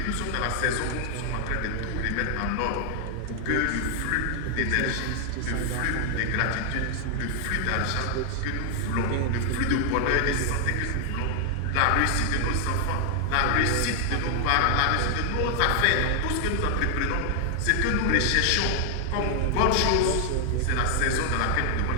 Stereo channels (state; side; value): different; both; correlation 0.00